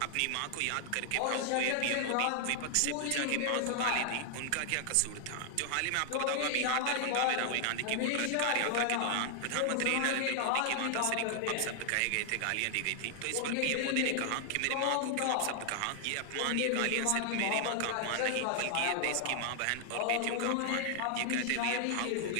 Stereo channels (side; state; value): both; different; correlation 0.00